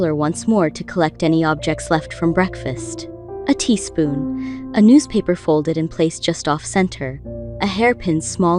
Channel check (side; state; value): both; identical; correlation 1.00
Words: once more to collect any objects left from breakfast. A teaspoon, a newspaper folded and placed just off-center, a hairpin